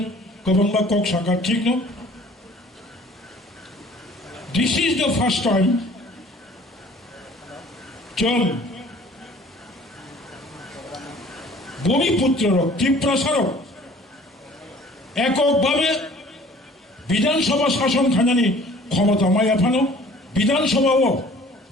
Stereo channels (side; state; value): both; normal; correlation 0.51